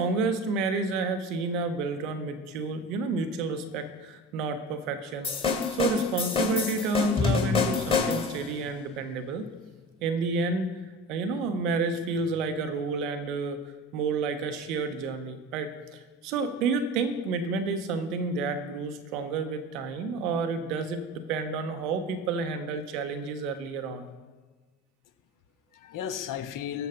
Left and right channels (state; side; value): normal; both; correlation 0.34